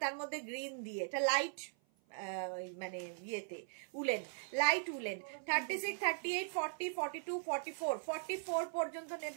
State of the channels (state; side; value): silent; left; 51 dB below the other